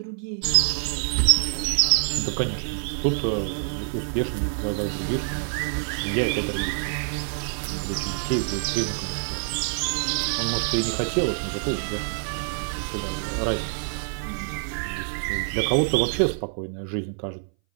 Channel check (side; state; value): left; silent; 59 dB below the other